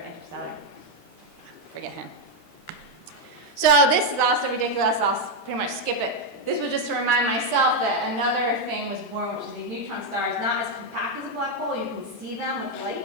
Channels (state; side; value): late; right; 13 ms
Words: Interstellar. Forget him. So this is also ridiculous. I'll pretty much skip it. This was just to remind myself that another thing was born, which is these neutron stars, not as compact as a black hole. You can see them with